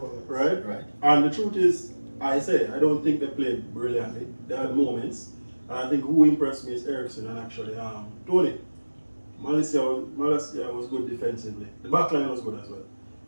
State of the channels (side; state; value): both; inverted; correlation -1.00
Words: Right? And the truth is, I don't think they played brilliantly. They had moments. And I think who impressed me is Ericsson and actually Tony. Malaysia was good defensively. The back line was good as well.